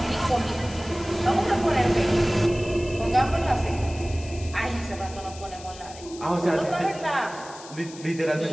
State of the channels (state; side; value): noise; left; hiss, 17 dB below the sound